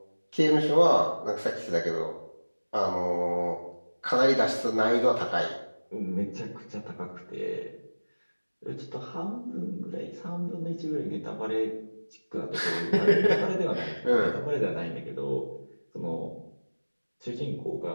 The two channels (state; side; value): inverted; both; correlation -1.00